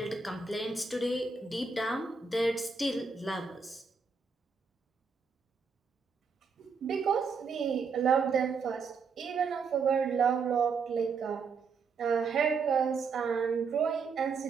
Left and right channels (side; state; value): left; quieter; 5.2 dB